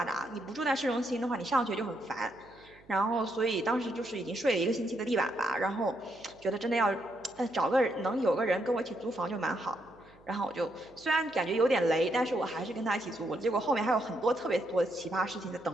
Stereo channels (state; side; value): noise; right; hum, 27 dB below the sound